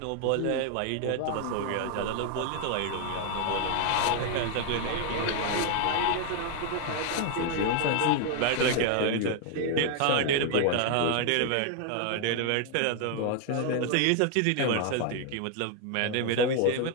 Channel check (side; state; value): both; different; correlation 0.00